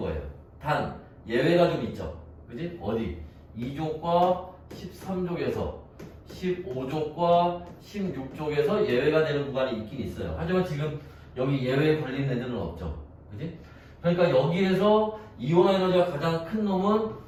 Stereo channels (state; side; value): identical; both; correlation 1.00